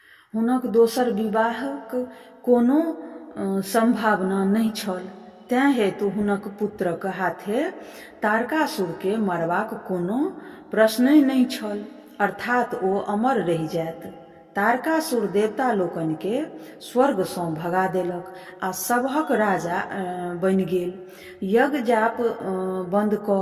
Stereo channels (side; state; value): both; identical; correlation 1.00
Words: हुनक दोसर विवाहक कोनो संभावना नहि छल। तेँ हेतु हुनक पुत्रक हाथे तारकासुर के मरबाक कोनो प्रश्नहि नहि छल, अर्थात ओ अमर रहि जायत। तारकासुर देवता लोकनि के स्वर्ग सँ भगा देलक आ सभक राजा बनि गेल। यज्ञ जाप बंद